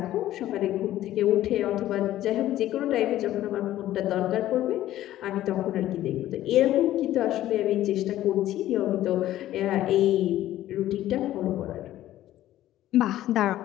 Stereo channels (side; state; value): right; quieter; 13.8 dB